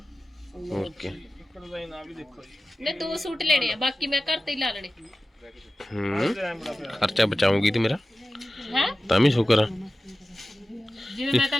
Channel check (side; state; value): both; normal; correlation 0.95